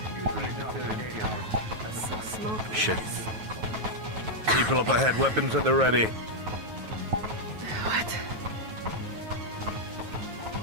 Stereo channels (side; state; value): left; late; 9.3 ms